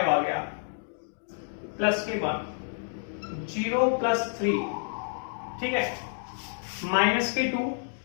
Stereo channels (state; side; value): silent; right; digital silence